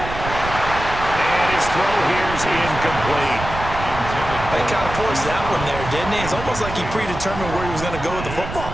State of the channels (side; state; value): right; noise; rumble, 8 dB below the sound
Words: his throw here's incomplete. They kind of forced that one there, didn't he? It's almost like he predetermined where he was going to go with the football.